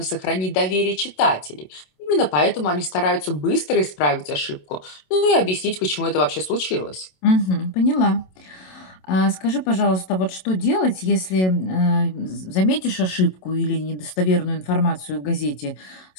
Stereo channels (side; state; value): right; late; 27 ms